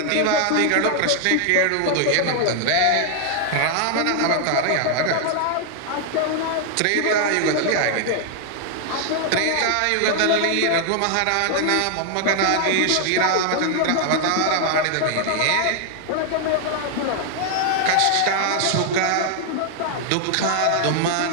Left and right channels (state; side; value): different; both; correlation 0.00